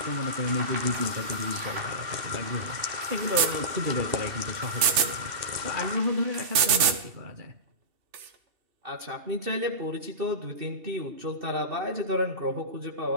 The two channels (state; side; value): late; left; 2.7 ms